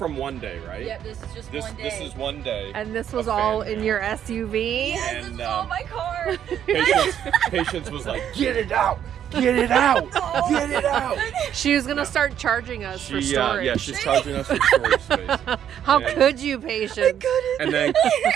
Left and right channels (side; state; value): left; quieter; 9.7 dB